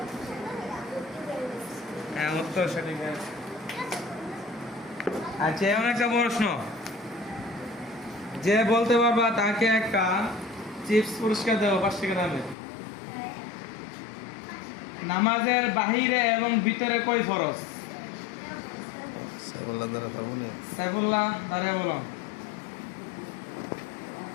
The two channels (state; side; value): drops out; right; at 12.6 s